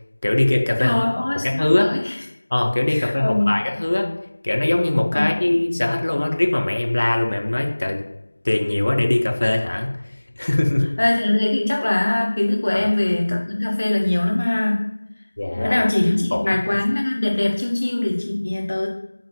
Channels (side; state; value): both; inverted; correlation -1.00